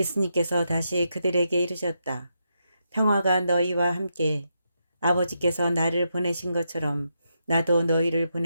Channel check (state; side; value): inverted; both; correlation -0.83